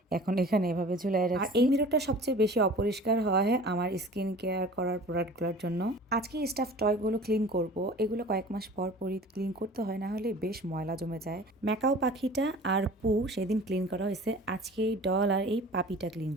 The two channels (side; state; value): both; normal; correlation 0.43